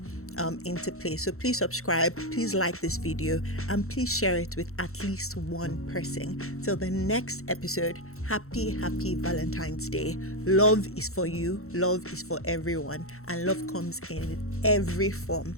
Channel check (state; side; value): late; right; 0.63 ms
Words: into place. So please subscribe, please like this video, and please share it with at least one person. Till the next episode, happy Valentine's Day. Love is for you, love is for everyone, and love comes in every form.